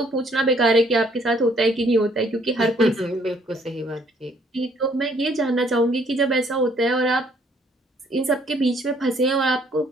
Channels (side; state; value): both; normal; correlation 0.64